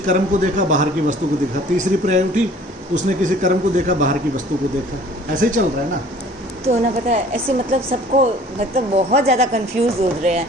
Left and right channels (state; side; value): normal; both; correlation 0.51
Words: को देखा, बाहर की वस्तु को देखा। तीसरी पर्याय उठी, उसने किसी कर्म को देखा, बाहर की वस्तु को देखा। ऐसे ही चल रहा है ना। तो ना पता है ऐसे, मतलब सबको, मतलब बहुत ज़्यादा कंफ्यूज हो रहे हैं।